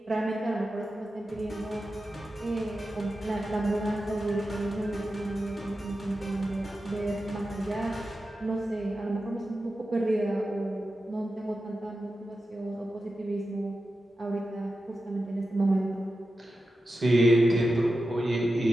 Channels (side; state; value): both; normal; correlation 0.91